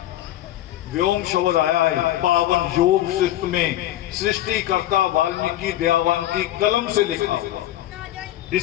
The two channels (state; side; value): quieter; right; 13.8 dB